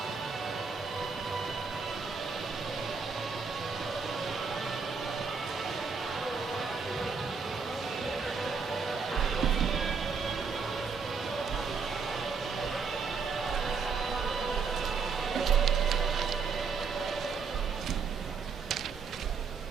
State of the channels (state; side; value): quieter; left; 5.3 dB